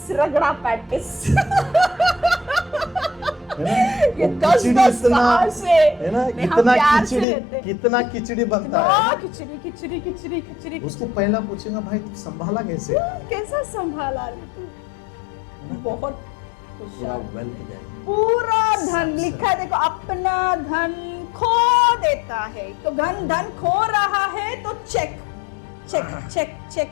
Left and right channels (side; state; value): right; drops out; at 7.2 s